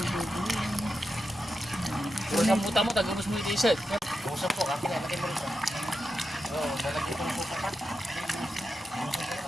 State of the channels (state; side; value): normal; both; correlation 0.89